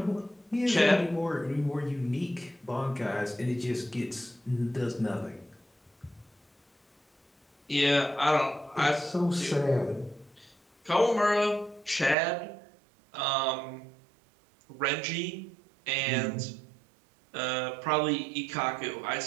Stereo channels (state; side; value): drops out; left; at 12.2 s